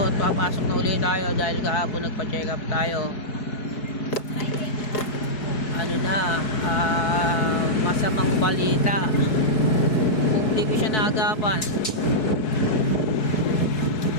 at papasok na ulit tayo dahil kahapon nagpa-check up tayo. Ano na, masamang balita. Kung di ko siya naagapan,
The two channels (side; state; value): right; late; 4.7 ms